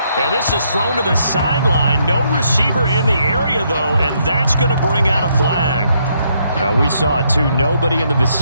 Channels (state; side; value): inverted; both; correlation -0.73